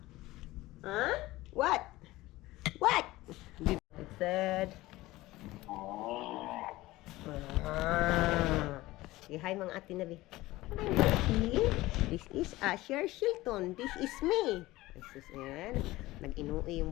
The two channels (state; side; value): quieter; right; 18.3 dB